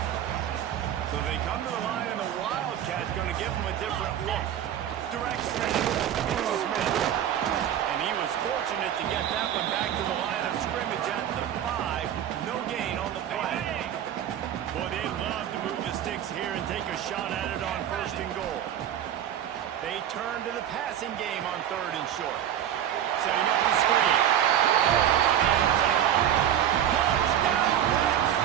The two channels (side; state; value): left; quieter; 10.4 dB